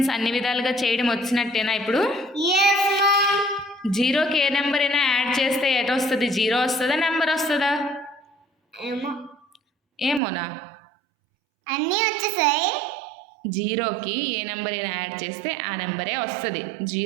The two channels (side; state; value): left; drops out; at 10.2 s